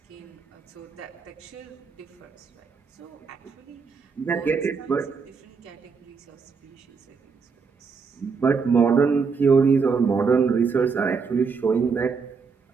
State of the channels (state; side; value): quieter; left; 5.3 dB